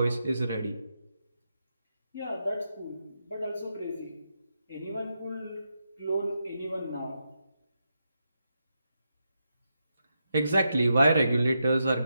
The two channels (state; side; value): inverted; both; correlation -0.84